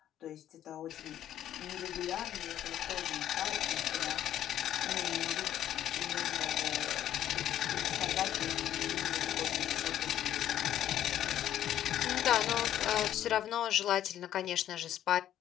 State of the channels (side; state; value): right; quieter; 11.5 dB